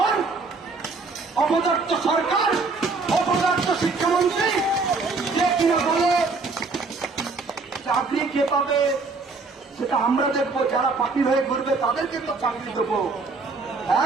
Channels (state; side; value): quieter; left; 4.1 dB